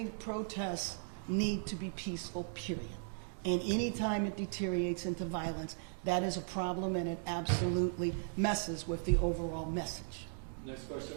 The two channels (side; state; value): left; silent; digital silence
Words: protests need to be peaceful, period. And any time it deteriorates into violence, that is a problem, and it absolutely messes with the overall message. Next question